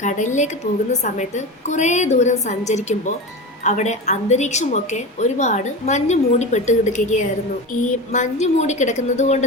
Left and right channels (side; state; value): both; normal; correlation 0.25